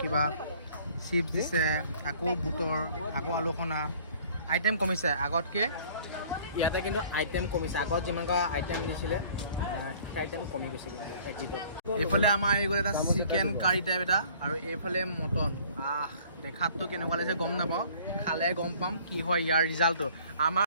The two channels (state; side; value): inverted; both; correlation -0.53